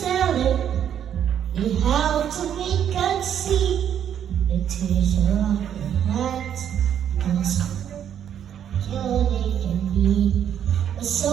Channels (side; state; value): left; quieter; 9.4 dB